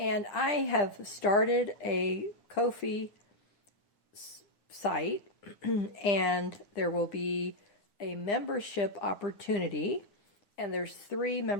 I have started a Ko-fi site, and there will be a membership opportunity, and there's 3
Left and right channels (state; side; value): late; right; 10 ms